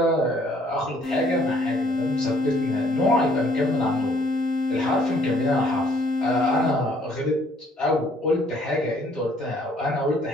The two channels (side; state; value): both; normal; correlation 0.63